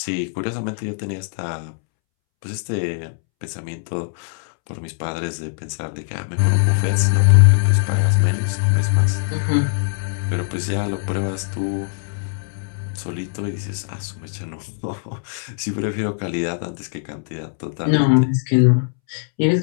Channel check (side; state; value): right; silent; 65 dB below the other